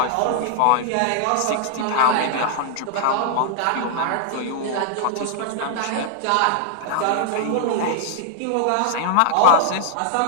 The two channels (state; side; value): different; both; correlation 0.00